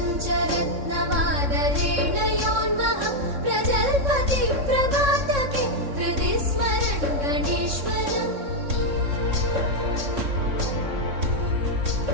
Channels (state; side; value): late; left; 3.6 ms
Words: योन्वहं प्रजल्पति प्रभातके हृदि स्मरन् गणेश्वरम्